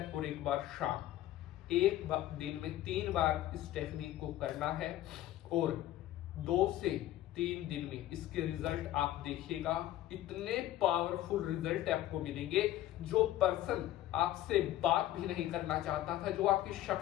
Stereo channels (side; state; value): right; quieter; 13.9 dB